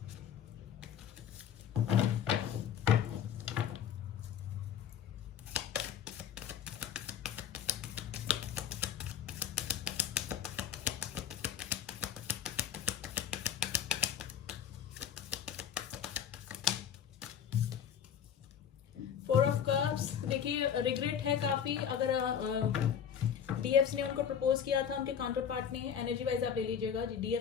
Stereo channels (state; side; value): quieter; right; 8.6 dB